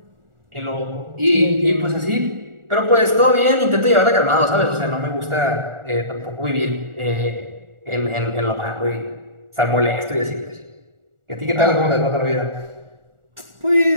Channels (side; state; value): left; late; 1.4 ms